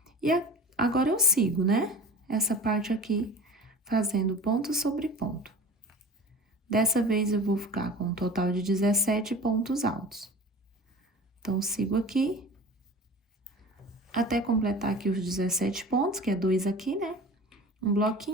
E agora eu sigo, né? Essa parte aqui, fazendo ponto sobre ponto. Dessa vez eu vou ficar com um total de 17 pontos altos. Então, sigo aqui, até completar aqui os 17 pontos, que é 2 aqui, né? Um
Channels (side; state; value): both; normal; correlation 0.39